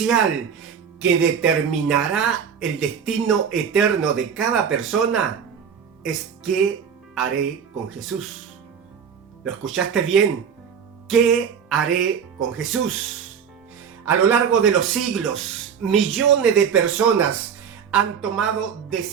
que determinará el destino eterno de cada persona, es ¿qué haré con Jesús? ¿Lo escuchaste bien? ¿Qué haré con Jesús? A lo largo de los siglos, millones de personas han tomado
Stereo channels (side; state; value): left; quieter; 7.2 dB